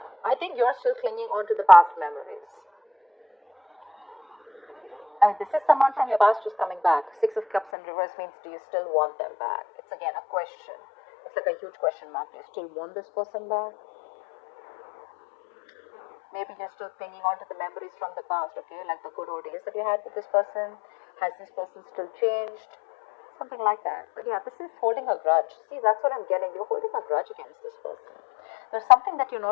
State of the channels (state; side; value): drops out; right; at 7.7 s